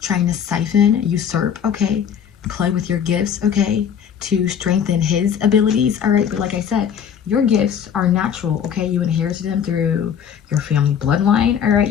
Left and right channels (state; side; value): quieter; right; 8.1 dB